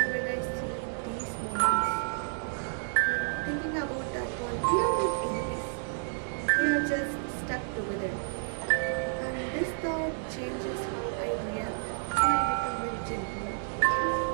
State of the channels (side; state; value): left; silent; digital silence